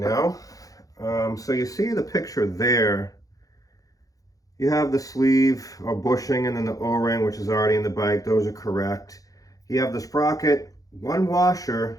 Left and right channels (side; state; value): right; late; 0.17 ms